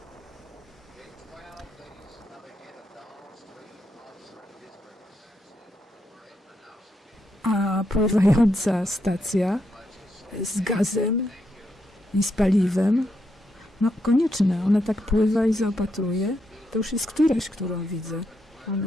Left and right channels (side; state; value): both; normal; correlation 0.81